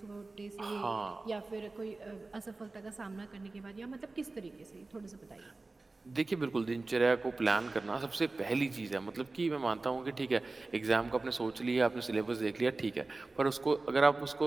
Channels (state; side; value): quieter; left; 3.4 dB